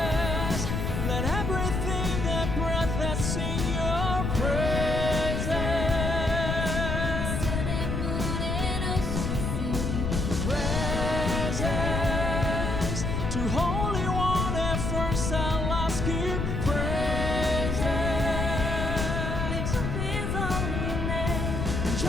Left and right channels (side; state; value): left; noise; rumble, 1 dB below the sound